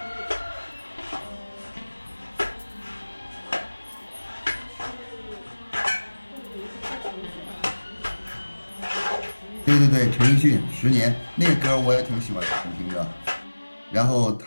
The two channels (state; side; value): inverted; both; correlation -1.00